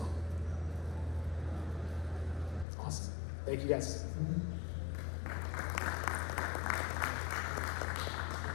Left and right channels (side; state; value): right; drops out; at 2.7 s